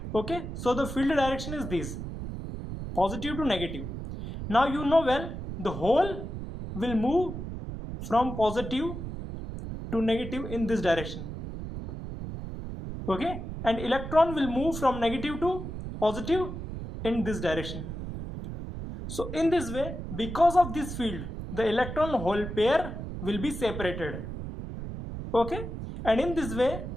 Okay, so the field direction is this, positive to negative. Now you know well the hole will move from positive to negative in this direction. Okay, and electron will move from negative to positive in this direction. So in this way, because of this field, the electron hole pair will be separated. Okay, and in this way,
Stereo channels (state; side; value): noise; right; rumble, 7 dB below the sound